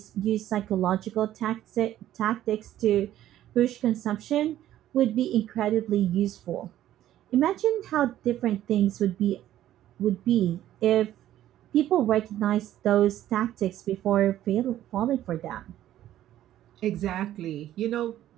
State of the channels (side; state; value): left; quieter; 12.7 dB